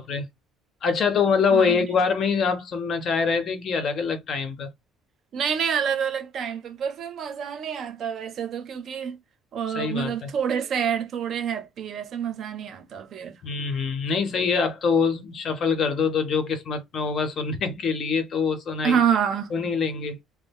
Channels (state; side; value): normal; both; correlation 0.57